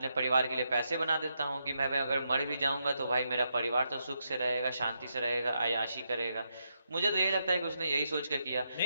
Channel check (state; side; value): inverted; both; correlation -0.82